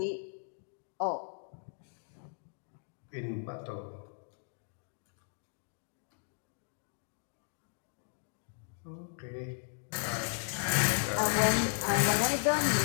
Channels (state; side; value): silent; right; digital silence